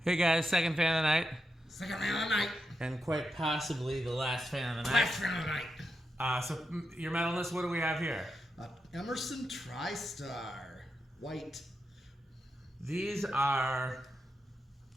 Hey guys, second fan of the night. Second fan of the night. And quite possibly the last fan of the night. Last fan of the night. So your metal list, what do we have here? Emerson Tristar. White. These are,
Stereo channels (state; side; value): normal; both; correlation 0.86